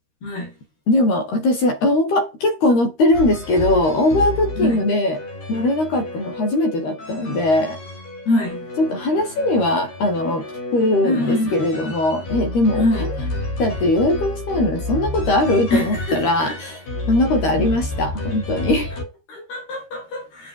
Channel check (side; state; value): right; late; 13 ms